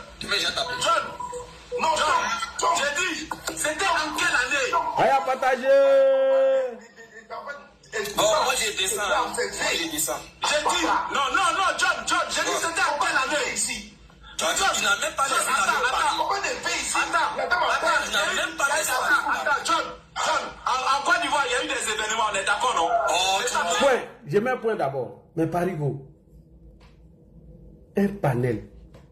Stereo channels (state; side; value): identical; both; correlation 1.00